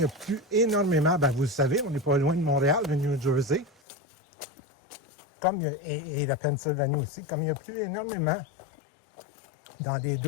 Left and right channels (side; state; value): right; drops out; at 3.7 s